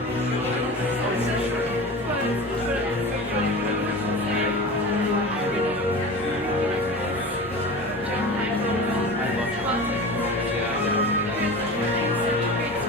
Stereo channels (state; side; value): normal; both; correlation 0.32